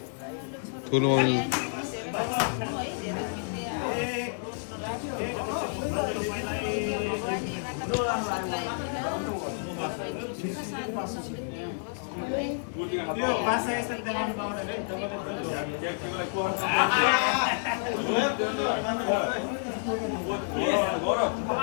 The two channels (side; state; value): right; silent; digital silence